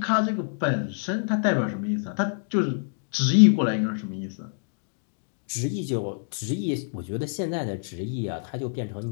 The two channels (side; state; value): right; silent; digital silence